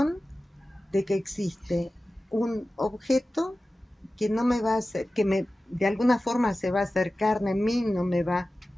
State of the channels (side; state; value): both; normal; correlation 0.95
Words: de que existe un objeto que no me va a hacer, de alguna forma se va a hacer carne en mí, no me va a